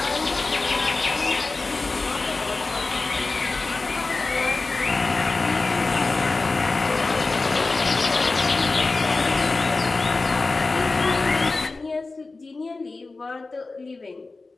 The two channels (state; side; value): quieter; right; 3.6 dB